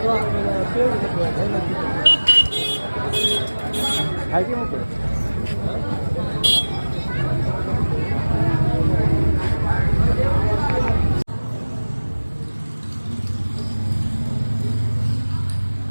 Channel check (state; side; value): inverted; both; correlation -1.00